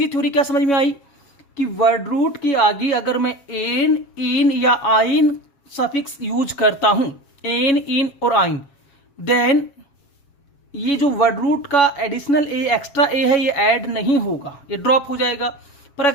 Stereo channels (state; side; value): late; right; 7.2 ms